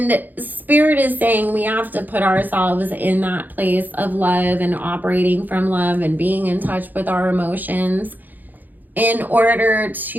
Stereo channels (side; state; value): left; late; 0.085 ms